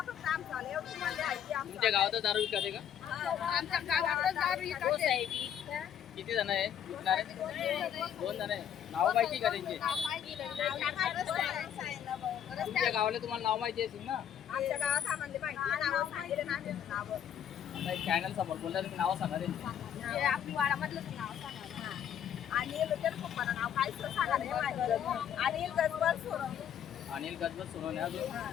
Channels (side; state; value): right; quieter; 9.4 dB